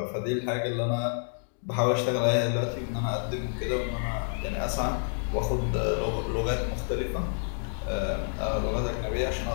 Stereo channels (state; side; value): silent; right; digital silence